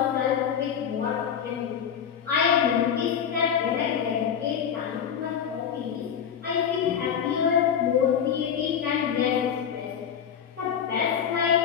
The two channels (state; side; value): quieter; right; 8.1 dB